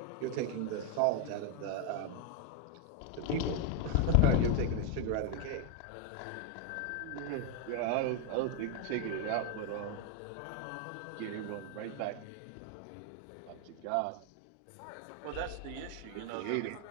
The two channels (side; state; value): both; different; correlation 0.01